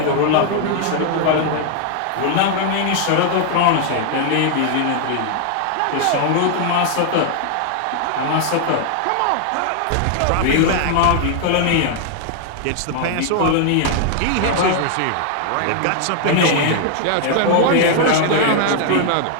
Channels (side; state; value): both; different; correlation 0.00